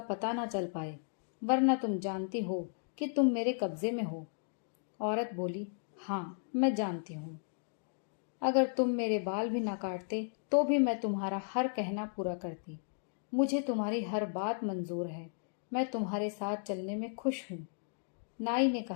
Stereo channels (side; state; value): right; silent; digital silence